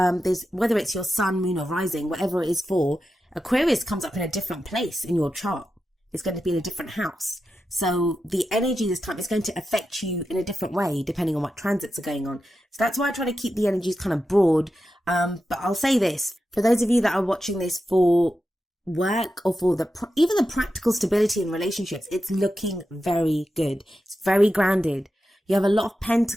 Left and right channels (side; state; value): both; normal; correlation 0.90